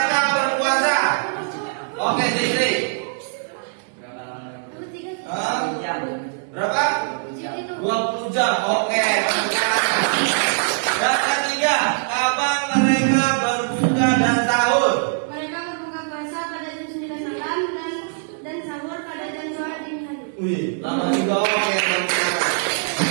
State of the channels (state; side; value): silent; left; digital silence